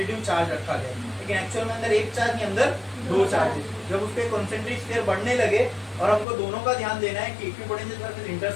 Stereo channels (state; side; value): drops out; right; at 6.2 s